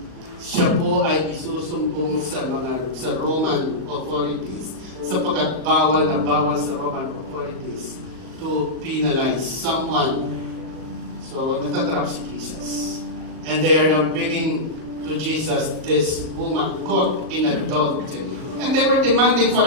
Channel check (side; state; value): left; late; 38 ms